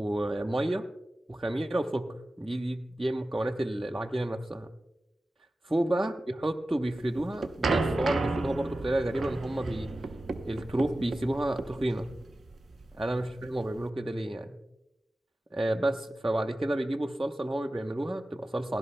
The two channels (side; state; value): both; normal; correlation 0.95